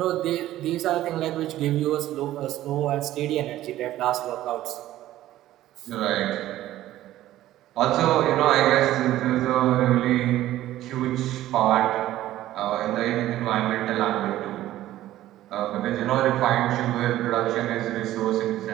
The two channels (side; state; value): left; quieter; 14.2 dB